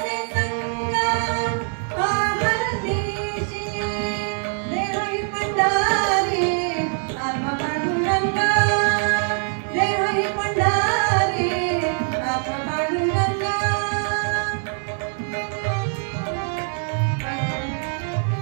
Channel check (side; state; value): left; silent; 55 dB below the other